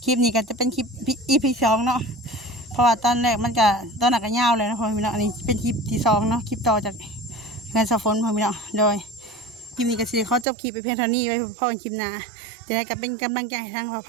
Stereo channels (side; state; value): left; drops out; at 10.5 s